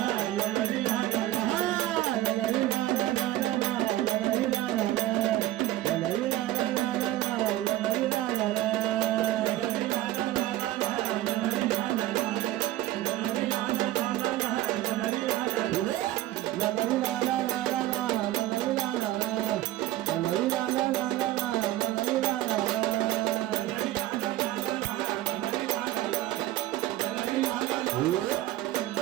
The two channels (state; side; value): quieter; left; 15.3 dB